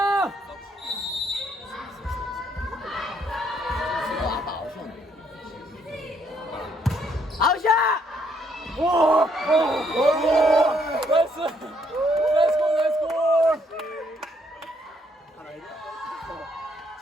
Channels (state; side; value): normal; both; correlation 0.70